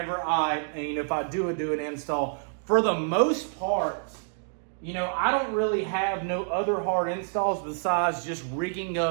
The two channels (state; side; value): silent; left; digital silence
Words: if I do an install. For the most part, I don't really have no other hard installs besides just rigging